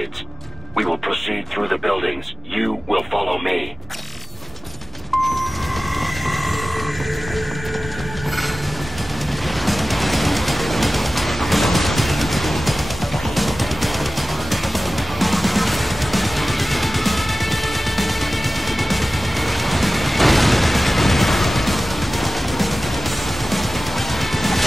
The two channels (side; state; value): both; normal; correlation 0.96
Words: We will proceed through the buildings. You will follow me.